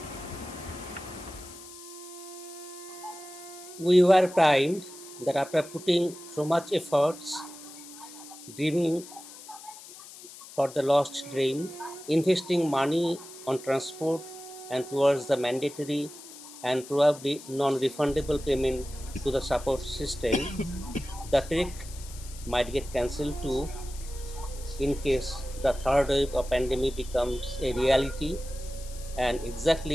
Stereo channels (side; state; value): left; noise; hiss, 16 dB below the sound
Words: We were primed that after putting so much efforts, dreaming for the lost dream, investing money on transport and towards the mandatory and probably non-refundable payment to the support system, the trek might get cancelled too in case the third wave of pandemic becomes a reality and